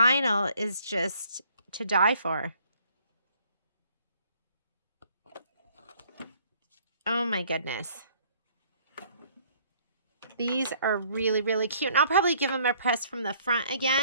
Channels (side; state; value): both; inverted; correlation -0.61